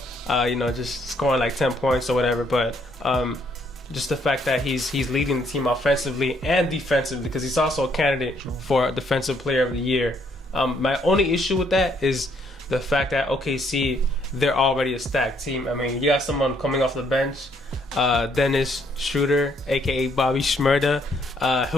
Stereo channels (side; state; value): both; normal; correlation 0.69